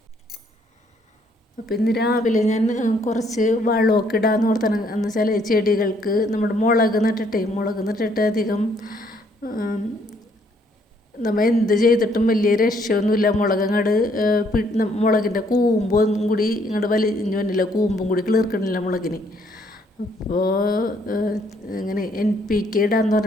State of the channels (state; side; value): normal; both; correlation 0.67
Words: അപ്പം ഇന്ന് രാവിലെ ഞാൻ കുറച്ച് വളമൊക്കെ ഇടാമെന്ന് ഓർത്താണ്. എന്ന് വെച്ചാൽ ചെടികൾക്ക് നമ്മുടെ മുളക് നട്ടിട്ട് അധികം നമ്മൾ എന്ത് ചെയ്തിട്ടും വലിയ രക്ഷയൊന്നുമില്ല. മുളകിൻ്റെ കൂമ്പും കൂടി ഇങ്ങോട്ട് വലിഞ്ഞു വന്നില്ല, കൂമ്പും കൂടി കിളിർക്കണില്ല മുളകിന്. അപ്പോൾ ഇങ്ങനെ NPK ഇടാന്ന്